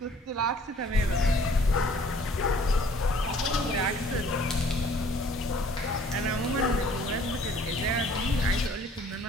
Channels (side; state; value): both; normal; correlation 0.56